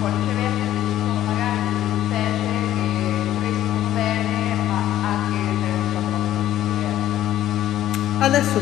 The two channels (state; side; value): quieter; right; 12.8 dB